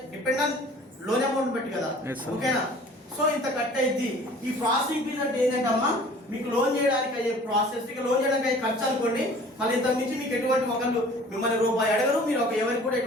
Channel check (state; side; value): normal; both; correlation 0.48